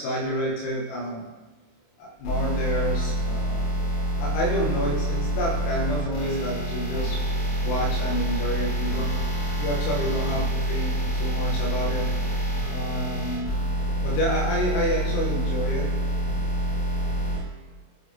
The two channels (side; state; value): right; late; 27 ms